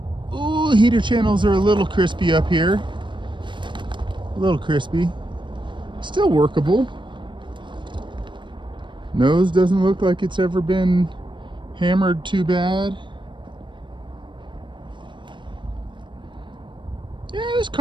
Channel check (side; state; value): left; late; 0.23 ms